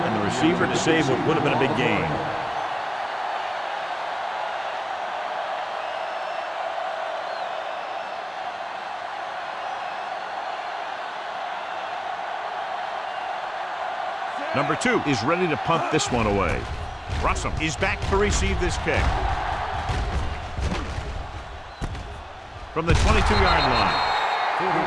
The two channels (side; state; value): both; identical; correlation 1.00